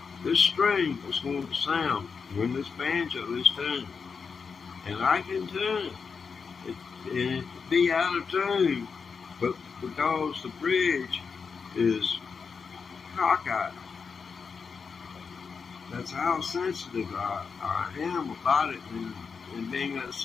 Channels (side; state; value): right; quieter; 5.6 dB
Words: this string is going to sound when this banjo is tuned. And I can tune it. And it could be out of tune, but because the bridge is cockeyed, that's how sensitive I am about it, and being that